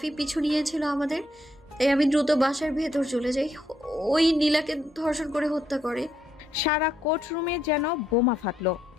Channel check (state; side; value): normal; both; correlation 0.75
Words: পিছু নিয়েছিল আমাদের, তাই আমি দ্রুত বাসার ভেতর চলে যাই। ওই নীলাকে ধর্ষণ করে হত্যা করে। সারা কোর্টরুমে যেন বোমা ফাটলো।